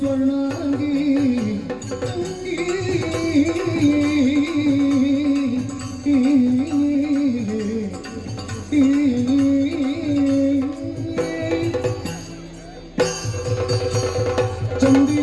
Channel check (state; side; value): identical; both; correlation 1.00